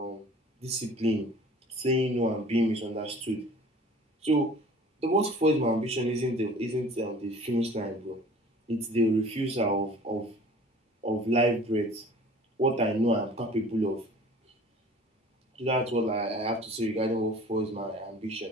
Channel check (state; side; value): normal; both; correlation 0.47